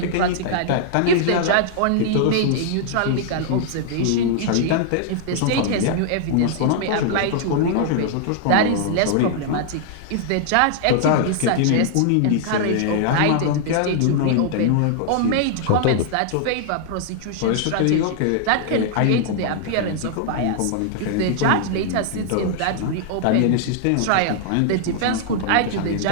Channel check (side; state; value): both; different; correlation -0.01